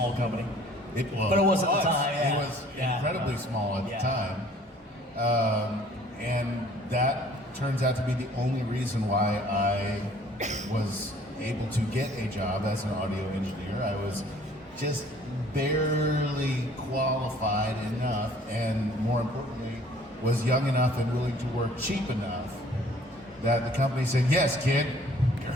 company. It was. But it was at the time, yeah. It was incredibly small at the time. And that turns out to be the only reason why I was able to get a job as an audio engineer. I was just barely qualified enough, and more importantly, was young enough and willing to work cheap enough that the company said, "Yes, kid, you're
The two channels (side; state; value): both; normal; correlation 0.55